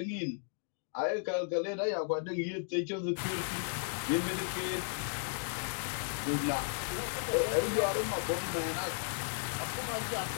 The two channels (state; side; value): silent; right; digital silence